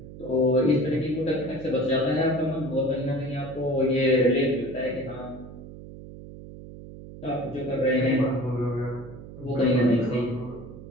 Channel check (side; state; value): right; noise; hum, 15 dB below the sound